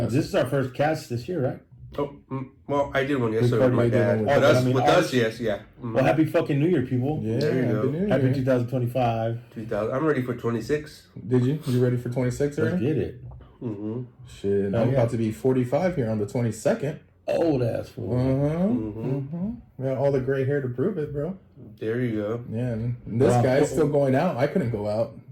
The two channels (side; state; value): both; identical; correlation 1.00